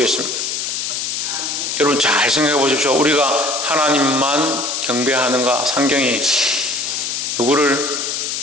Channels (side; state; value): left; noise; hiss, 2 dB below the sound